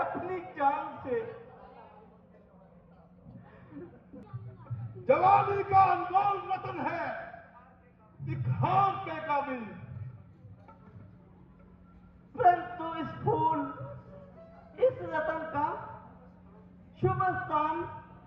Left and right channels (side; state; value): both; identical; correlation 1.00